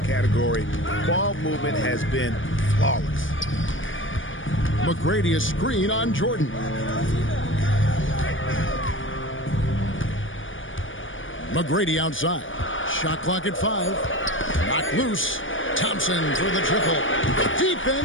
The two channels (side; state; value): right; late; 0.57 ms